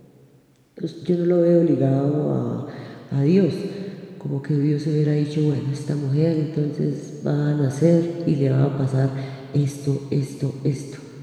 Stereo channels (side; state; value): both; identical; correlation 1.00